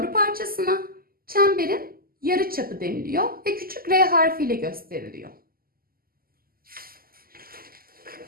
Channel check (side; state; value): left; late; 0.42 ms